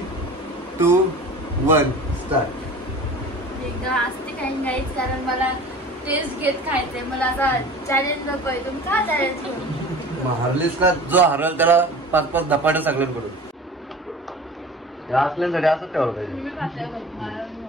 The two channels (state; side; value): normal; both; correlation 0.40